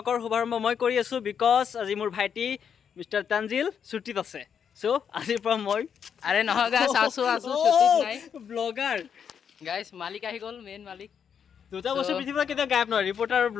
শুভাৰম্ভ মই কৰি আছো because আজি মোৰ ভাইটি মিস্টাৰ তানজিল ছুটিত আছে। সো আজিৰ পৰা মই আৰে নহয় গাইস আছো ছুটিত নাই ব্লগাৰ গাইস মালিক আহি গল মেইন মালিক দুটা বছৰ পৃথিৱীৰ কেতিয়া গায়ব নহয় ৰিপৰ্টাৰ আৰু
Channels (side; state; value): right; quieter; 7.5 dB